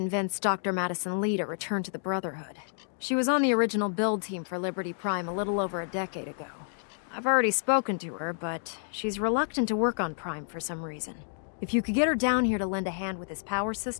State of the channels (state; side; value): silent; right; digital silence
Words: Dr. Madison Lee to return to the Brotherhood. She was on the original build team for Liberty Prime a little over a decade ago. I've already spoken to her, but she's reluctant to work on Prime for some reason. If you could get her down here to lend a hand with his power